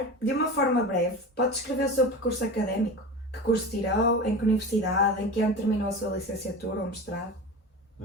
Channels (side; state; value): both; normal; correlation 0.29